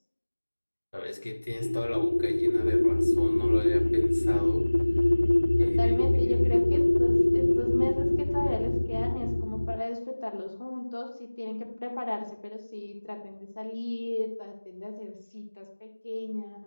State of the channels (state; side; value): inverted; both; correlation -1.00